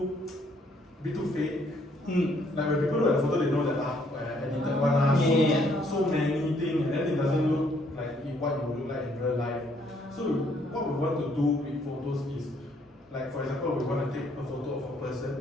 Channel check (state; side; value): normal; both; correlation 0.67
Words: fake. Like when people look at the photo, they know that edited one, so many things, and then it doesn't look like what it would look like in real life. So what we want to do with photos is, like for example, we want to take a photo of a person.